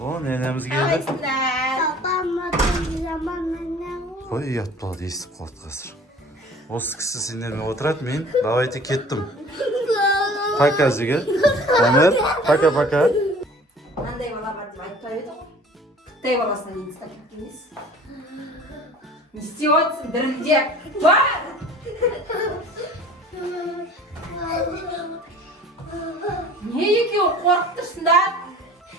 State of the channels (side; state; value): both; normal; correlation 0.47